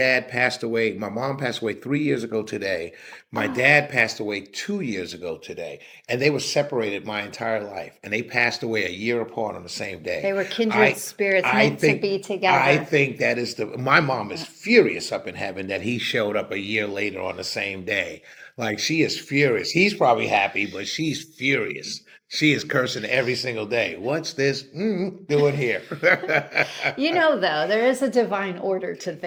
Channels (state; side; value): identical; both; correlation 1.00